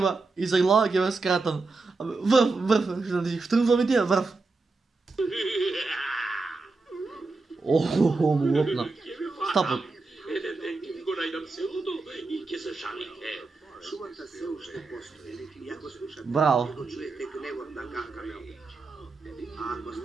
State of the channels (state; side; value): quieter; left; 3.8 dB